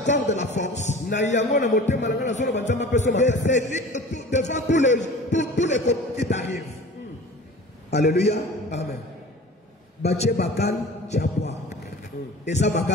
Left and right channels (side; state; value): both; normal; correlation 0.41